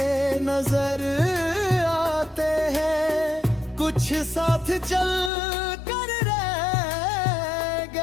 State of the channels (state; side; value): drops out; right; at 5.3 s